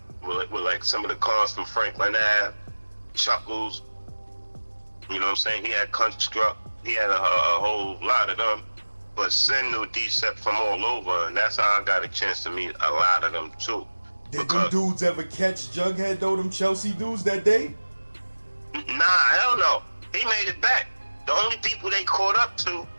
with like some of the cons from Franklin Ave, Chuckles. You know what I'm saying? He had Construct. He had a whole lot of them. But Sin knew Decept from all over, and that's how I got a chance to meet a lot of them too. Did them dudes ever catch Jughead though, them Chelsea dudes that day? Nah, hell no. He made it back. The only people they caught up to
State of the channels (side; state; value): both; inverted; correlation -1.00